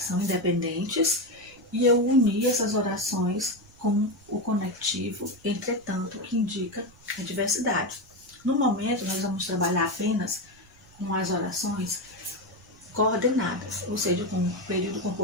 são independentes, e eu uni essas orações com o conectivo, entretanto, que indica a diversidade. No momento, nós vamos trabalhar apenas com as orações coordenadas, ou seja, com o período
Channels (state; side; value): noise; right; rumble, 27 dB below the sound